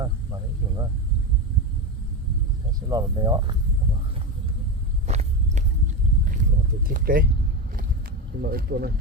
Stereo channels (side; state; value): both; normal; correlation 0.16